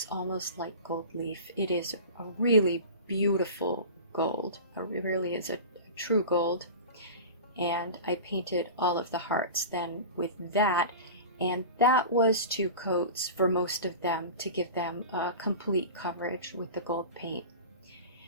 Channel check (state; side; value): inverted; both; correlation -0.34